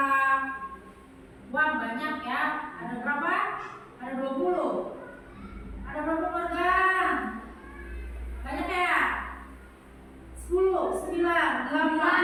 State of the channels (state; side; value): identical; both; correlation 1.00